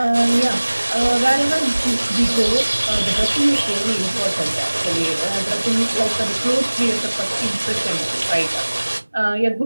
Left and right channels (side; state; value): both; inverted; correlation -1.00